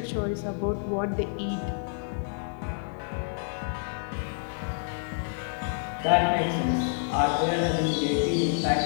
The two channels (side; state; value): right; silent; digital silence